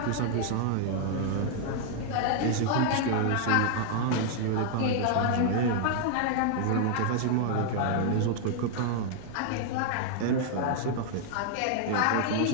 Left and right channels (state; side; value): different; both; correlation 0.00